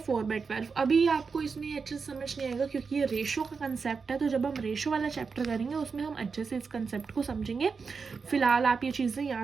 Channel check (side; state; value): left; quieter; 5.1 dB